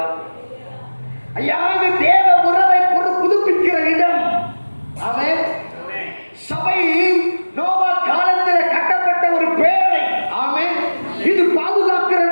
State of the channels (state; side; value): inverted; both; correlation -1.00